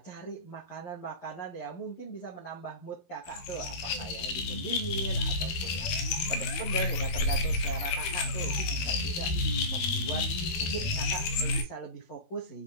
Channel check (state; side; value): late; right; 12 ms